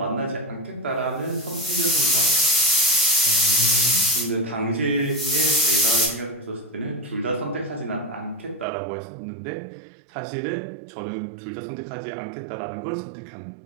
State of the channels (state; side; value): drops out; left; at 8.7 s